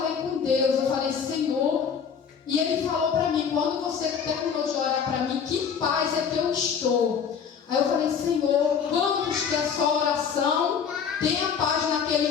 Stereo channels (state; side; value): quieter; right; 6.9 dB